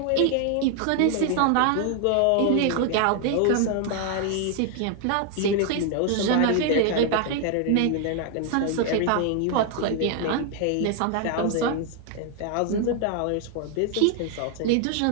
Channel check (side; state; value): both; different; correlation 0.00